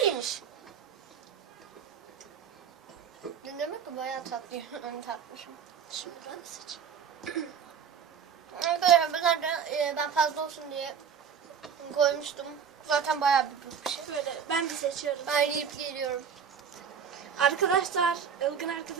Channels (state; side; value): quieter; left; 7.3 dB